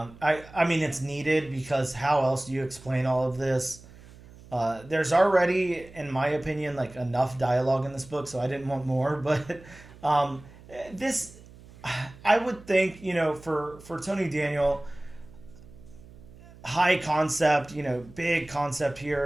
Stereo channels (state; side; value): noise; right; hum, 21 dB below the sound